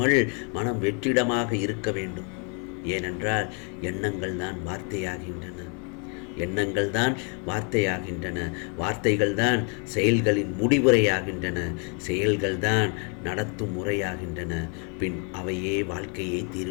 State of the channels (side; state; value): right; quieter; 37.4 dB